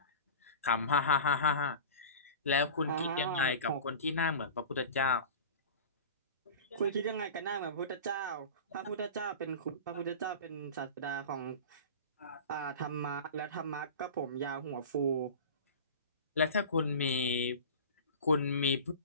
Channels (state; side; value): inverted; both; correlation -0.34